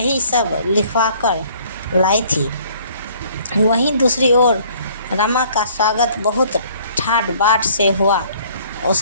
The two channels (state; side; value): inverted; both; correlation -0.58